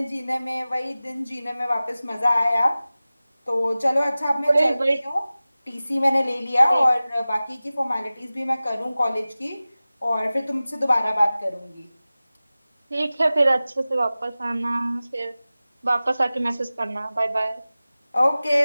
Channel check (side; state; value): both; inverted; correlation -0.97